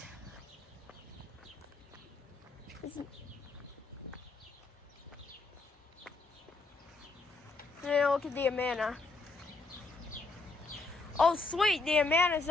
now look at the Amana. Oh sweet, the Amana is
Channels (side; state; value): right; quieter; 3.6 dB